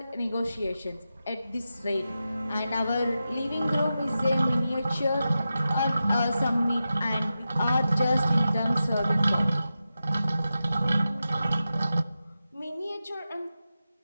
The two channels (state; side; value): inverted; both; correlation -0.91